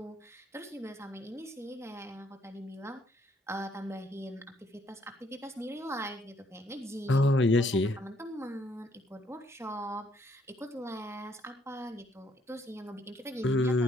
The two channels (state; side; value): normal; both; correlation 0.68